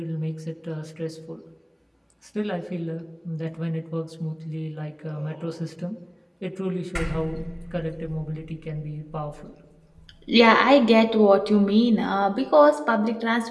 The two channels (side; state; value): both; identical; correlation 1.00